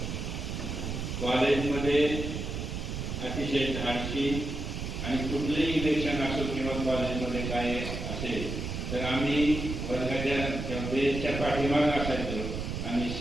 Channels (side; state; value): right; noise; rumble, 4 dB below the sound